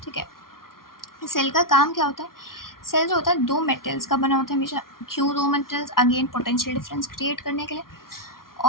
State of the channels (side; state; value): right; late; 0.92 ms